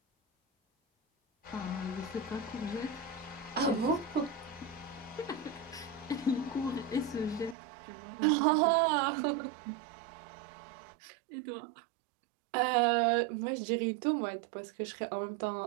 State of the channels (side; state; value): left; drops out; at 7.6 s